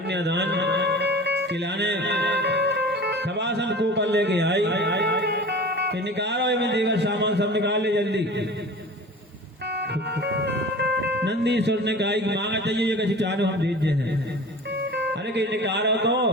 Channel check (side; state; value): both; normal; correlation 0.39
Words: खिलाने खबासन को पर लेके आई कि निकालो में देवर सामान सब निकाल ले जल्दी। नंदीश्वर ने कहा कि मांगा चाहिए ये कहीं चारो हम दीजिए हैं। अरे कि निकालो